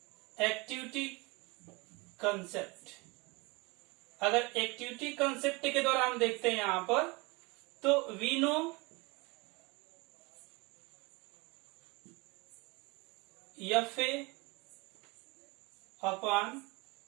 एक्टिविटी कंसेप्ट, अगर एक्टिविटी कंसेप्ट के द्वारा हम देखते हैं यहां पर, तो we know F A upon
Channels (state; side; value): quieter; left; 26.0 dB